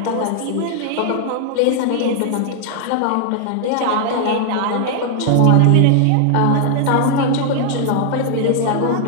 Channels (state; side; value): different; both; correlation 0.00